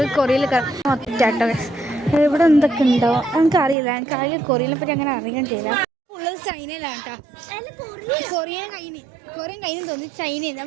കൊറിയയിൽ കയറാം. ഒറ്റാട്ടോ ഇവിടെ എന്തൊക്കെ ഉണ്ടാവും നമുക്കറിയില്ല. എനിക്ക് ആകെ കൊറിയനെ പറ്റി അങ്ങനെ അറിയാൻ ചെയ്യില്ല. ഉള്ളത് ചൈനയിലാണ് കേട്ടോ. കൊറിയൻ കഴിഞ്ഞു തോന്നി, ചൈനയിൽ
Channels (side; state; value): left; drops out; at 3.8 s